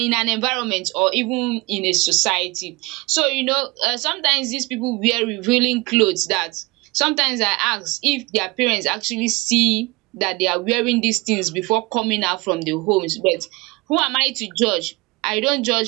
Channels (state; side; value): quieter; left; 24.5 dB